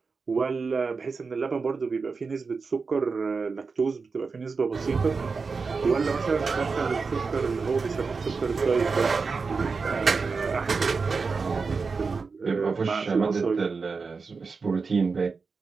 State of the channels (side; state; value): left; quieter; 4.7 dB